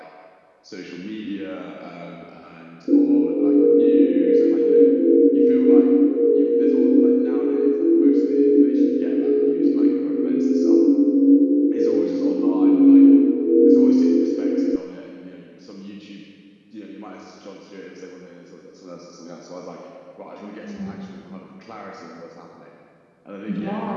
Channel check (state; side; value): identical; both; correlation 1.00